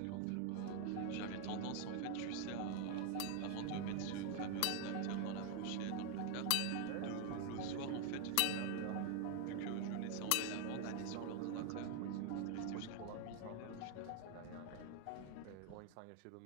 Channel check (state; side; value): different; both; correlation 0.01